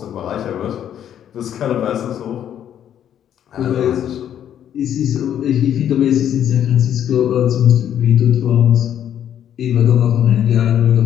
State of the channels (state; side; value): quieter; right; 10.0 dB